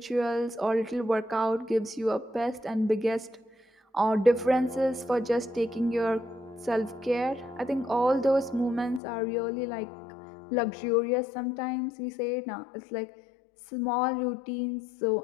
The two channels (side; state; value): right; drops out; at 9.0 s